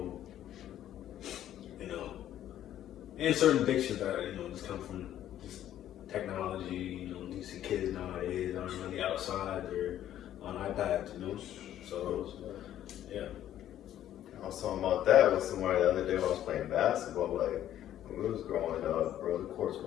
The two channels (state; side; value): quieter; right; 11.7 dB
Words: you know, and certain addictions that, you know, just come from just technology. You know, you see kids nowadays aren't really outside, they're on iPads, you know, so, yeah. I was talking about that with somebody the other day when I was playing basketball. Like, when we was growing up, bro, the courts